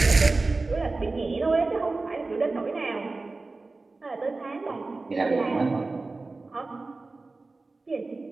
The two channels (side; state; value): left; quieter; 3.5 dB